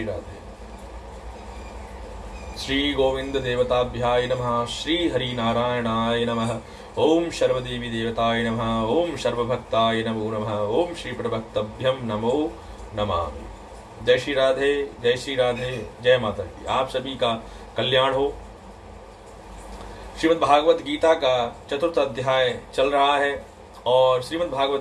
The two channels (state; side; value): identical; both; correlation 1.00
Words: राधे। श्री गोविंद देवताभ्याय नमः, श्री हरि नारायणाय नमः, ओम सर्वदेवी देवताय नमः, ओम सर्वभक्ताय नमो नमः, ओम श्री प्रभक्तभ्यम नमो नमः। जय श्री राधे, जय श्री राधे, जय माता की। आप सभी का कल्याण हो। श्रीमद् भागवत गीता का 4th अध्याय चल रहा है और श्रीमद्